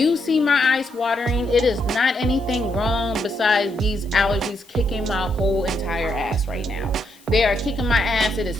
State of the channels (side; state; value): left; noise; hiss, 27 dB below the sound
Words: see my eyes watering, it is not anything wrong besides these allergies kicking my whole entire ass right now. They are kicking my ass. It is